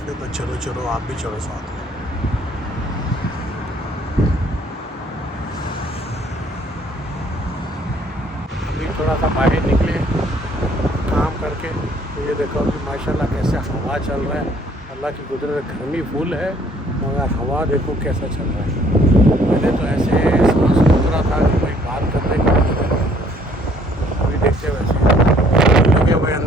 तो चलो चलो आप भी चलो साथ में। अभी थोड़ा सा बाहर निकले काम करके, तो ये देखो अभी माशाल्लाह कैसे हवा चल रहा है। अल्लाह की कुदरत, गर्मी फुल है मगर हवा देखो कैसा चल रहा है। पहले तो ऐसे सांस रुक रहा था कि भाई बात करने का, अभी देखते वैसे लगे हुए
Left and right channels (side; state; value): both; normal; correlation 0.62